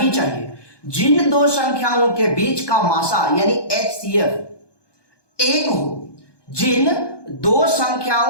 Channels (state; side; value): late; right; 1.2 ms